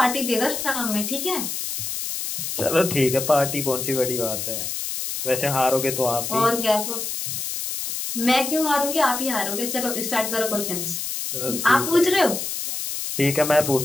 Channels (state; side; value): noise; left; hiss, 4 dB below the sound